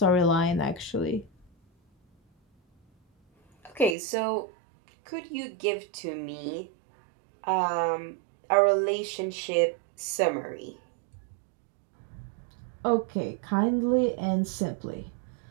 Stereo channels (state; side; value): drops out; left; at 4.0 s